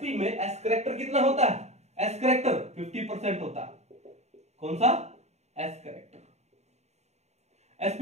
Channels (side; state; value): left; late; 0.32 ms